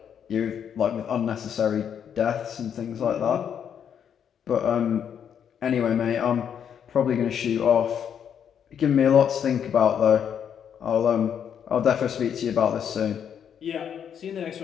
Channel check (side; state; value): right; quieter; 8.3 dB